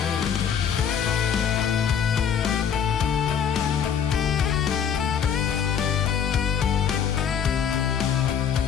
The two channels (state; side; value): quieter; right; 7.8 dB